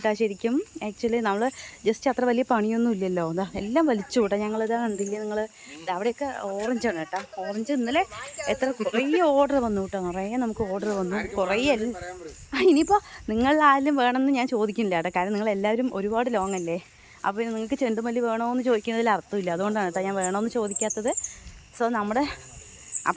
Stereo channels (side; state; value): both; identical; correlation 1.00